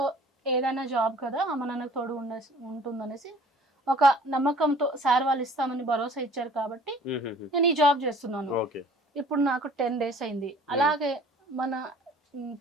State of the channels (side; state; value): both; normal; correlation 0.50